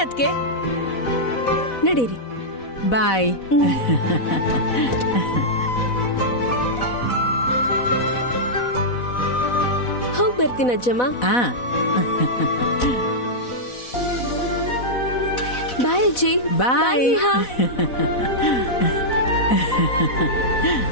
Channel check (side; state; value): right; late; 4.1 ms